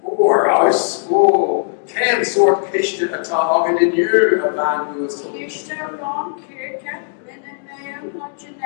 Or ice. Oh, can sort kishta a tog in you a man who is Kishta Ron Kirka, Lynn Mayor,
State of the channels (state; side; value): silent; right; digital silence